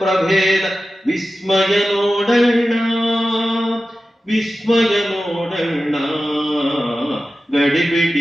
ವಿಸ್ಮಯ ನೋಡಣ್ಣ, ವಿಸ್ಮಯ ನೋಡಣ್ಣ,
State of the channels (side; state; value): both; normal; correlation 0.94